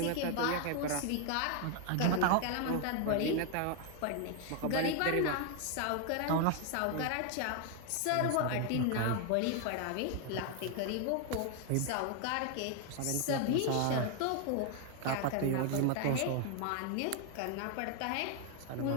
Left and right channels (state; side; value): different; both; correlation 0.01